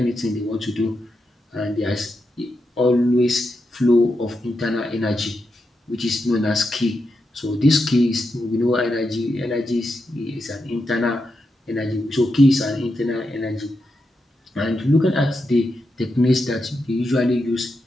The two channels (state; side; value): normal; both; correlation 0.86